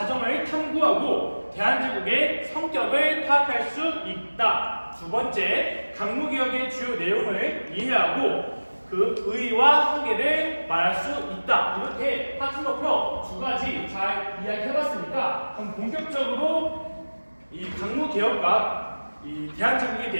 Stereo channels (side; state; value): both; inverted; correlation -1.00